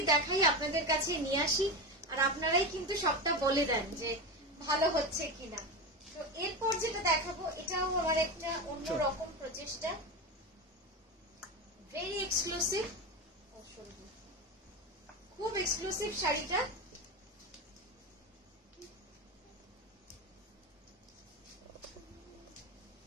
দেখাই, আপনাদের কাছে নিয়ে আসি, আর আপনারাই কিন্তু সবটা বলে দেন যে ভালো হচ্ছে কিনা। তো এরপর যেটা দেখাবো এটাও আমার একটা অন্যরকম প্রচেষ্টা, ভেরি এক্সক্লুসিভ, খুব এক্সক্লুসিভ শাড়িটা।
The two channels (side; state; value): both; normal; correlation 0.20